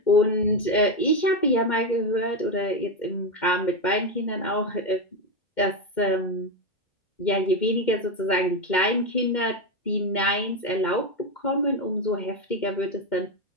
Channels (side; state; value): right; late; 2.2 ms